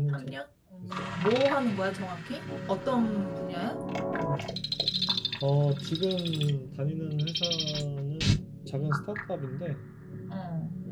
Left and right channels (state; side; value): identical; both; correlation 1.00